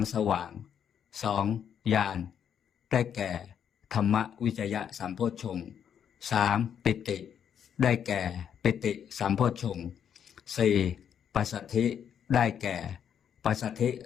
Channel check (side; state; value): right; quieter; 8.5 dB